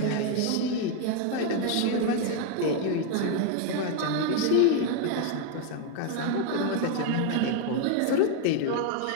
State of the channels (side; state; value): both; different; correlation 0.00